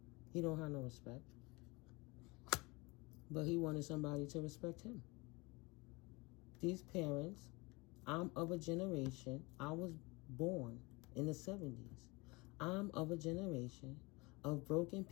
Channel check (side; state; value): right; quieter; 24.8 dB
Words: He don't have no respect. But he wanted somebody to respect him. These parents, I'm of a generation, I was born in the 70s. I'm of a generation of broken